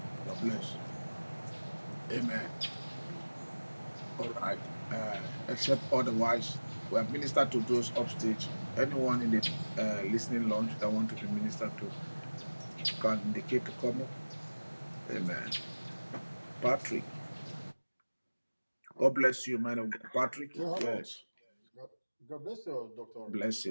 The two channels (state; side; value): inverted; both; correlation -1.00